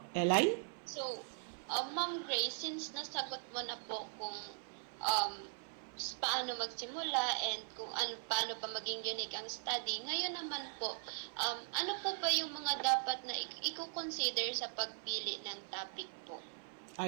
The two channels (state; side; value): silent; left; 51 dB below the other